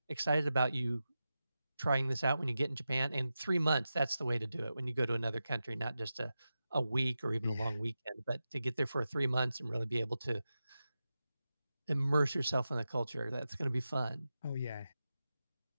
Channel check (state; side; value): inverted; both; correlation -0.92